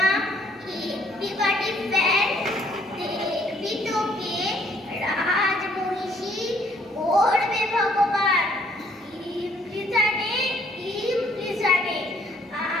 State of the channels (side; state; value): both; normal; correlation 0.64